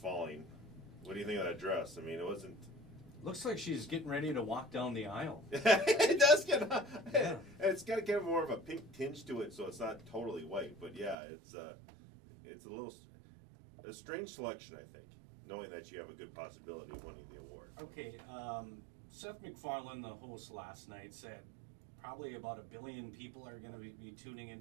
What do you think of that dress? I mean, it wasn't... Looks like she's getting ready to walk down the aisle. It does get... Yeah. It's got kind of more of a pink tinge to it, so it's not totally white. But yeah, it's a little... A strange selection, I think, knowing that you have a good possibility of winning the award. Okay, Seth MacFarlane, the host last night, said probably about 1 billion people are going to be tuning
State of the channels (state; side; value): drops out; left; at 11.2 s